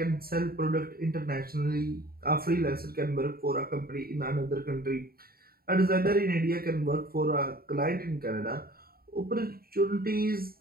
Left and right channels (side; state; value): left; late; 0.43 ms